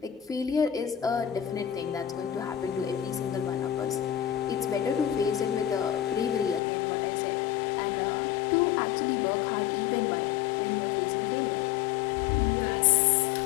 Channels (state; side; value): drops out; right; at 6.6 s